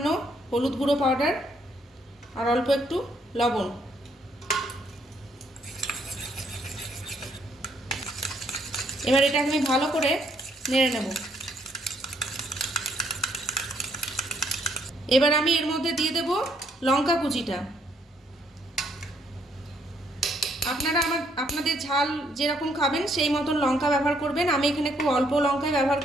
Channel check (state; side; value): normal; both; correlation 0.69